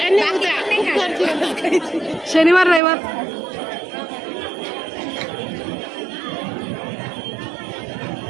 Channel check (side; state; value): left; drops out; at 2.8 s